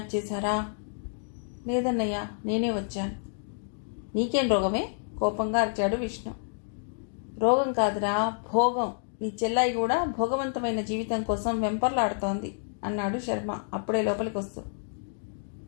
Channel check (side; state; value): right; silent; digital silence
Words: చేశారా? లేదన్నయ్య, నేనే వచ్చాను. నీకేం రోగమే? కోపంగా అరిచాడు విష్ణు. రోగం కాదురా, భోగం. నీ చెల్లాయి కూడా భోగవంతమైన జీవితం కోసం వెంపర్లాడుతోంది అన్నాడు శర్మ అప్పుడే లోపలికి వస్తూ.